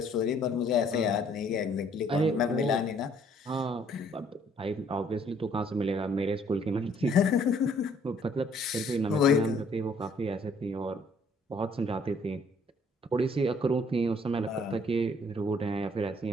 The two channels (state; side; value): normal; both; correlation 0.62